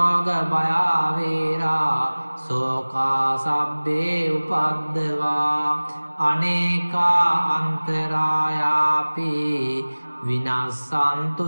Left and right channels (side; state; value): both; inverted; correlation -1.00